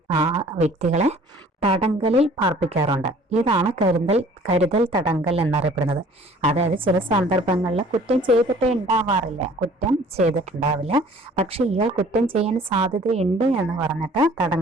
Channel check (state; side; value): normal; both; correlation 0.52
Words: ആ വ്യക്തികളെ തടങ്കലിൽ പാർപ്പിക്കാറുണ്ട്. ഇതാണ് കരുതൽ തടങ്കൽ എന്നറിയപ്പെടുന്നത്. അതായത് ചില സന്ദർഭങ്ങളിൽ കുറ്റം ചെയ്തിട്ടുണ്ടാവില്ല, പക്ഷെ ഇയാൾ കുറ്റം ചെയ്യാൻ സാധ്യതയുണ്ട് എന്ന് പറഞ്ഞിട്ട്